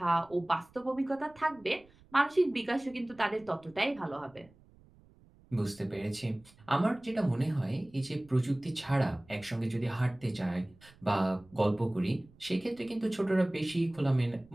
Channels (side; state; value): right; noise; rumble, 27 dB below the sound